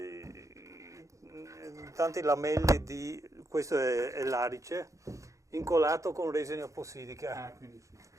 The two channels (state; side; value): late; left; 0.15 ms